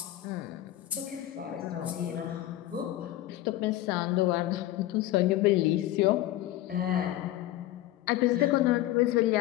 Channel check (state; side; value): quieter; right; 14.8 dB